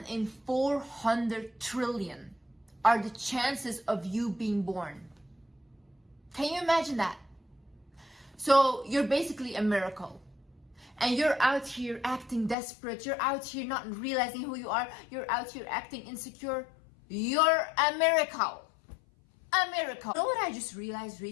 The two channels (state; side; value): drops out; right; at 12.6 s